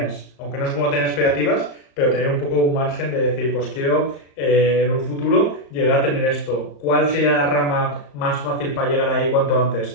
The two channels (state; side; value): late; right; 34 ms